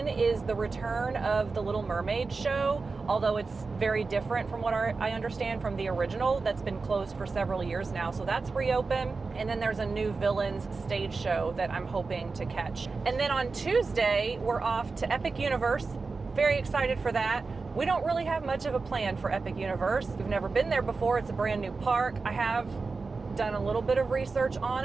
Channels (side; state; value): left; quieter; 4.2 dB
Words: is the return of the Little Mermaid show, although it's very different from what I understand from the original that's been closed for several years now. So that's reopened. And then there's a new Villains stage show that I'm hoping to catch. And then on Tuesday, we're off to Epic Universe. Very excited for that. We don't really have much of a plan for Epic Universe. We've never been there before. It's a brand new park. I have done a little bit of research on